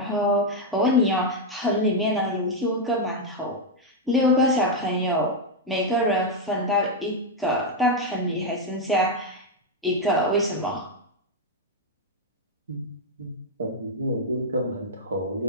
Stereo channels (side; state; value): both; normal; correlation 0.01